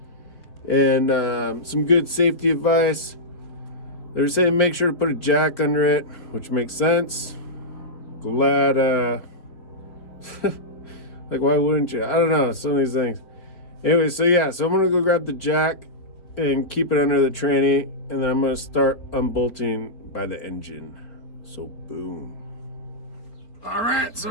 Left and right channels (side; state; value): right; late; 4.4 ms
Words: And some good safety advice. They were saying make sure to put a jack under it, which makes sense. Glad, like, why wouldn't you? I don't know, some of these things. Anyway, so yeah, so I'm going to go grab the jack and keep it under the tranny, and then I'm going to start unbolting by the engine. So, boom. All right, so